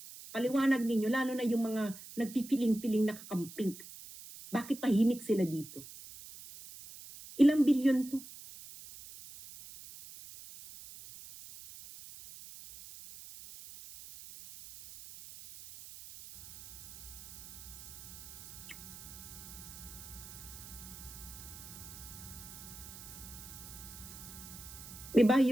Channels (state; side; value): noise; right; hiss, 15 dB below the sound